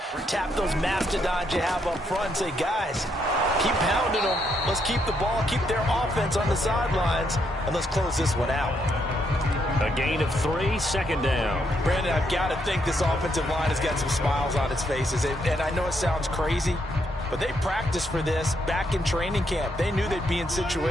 tap those mastodons you have up front and say, guys, keep pounding them. Let's keep the ball, keep their offense on the sidelines, and let's close this one out. A gain of 3, 2nd down. Brandon, I've got to think this offensive line has got some smiles on its faces. And I know it sounds crazy, but they practiced for this back in training camp. They knew they'd be in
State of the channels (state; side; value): normal; both; correlation 0.76